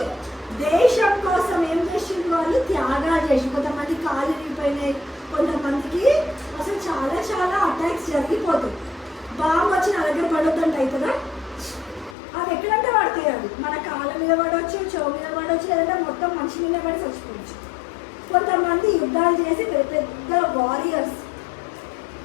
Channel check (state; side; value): drops out; right; at 12.2 s